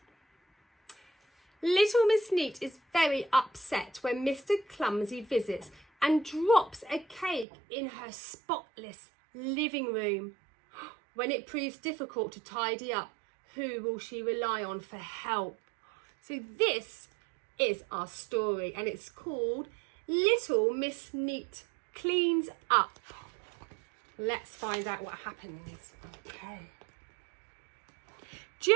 Little Miss Neat is very upset when Mr. Clumsy visits and drops a cake in her spotless living room. When it proves difficult to tidy up, who will she rely on for help? So this is our story and it's called Little Miss Neat Cleans Up. Let's find out what happens. Okay.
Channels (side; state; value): left; drops out; at 7.5 s